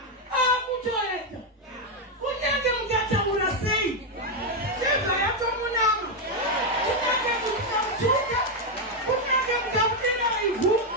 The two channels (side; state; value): both; normal; correlation 0.03